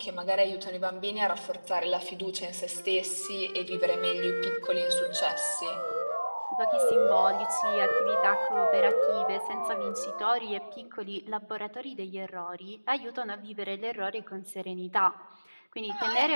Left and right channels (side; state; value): both; inverted; correlation -1.00